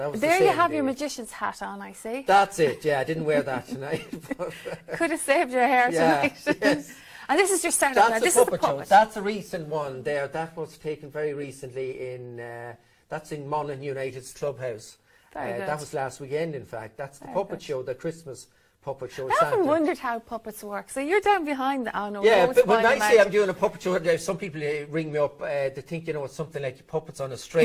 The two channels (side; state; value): both; identical; correlation 1.00